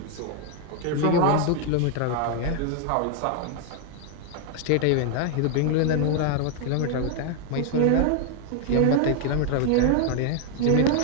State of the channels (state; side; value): different; both; correlation 0.00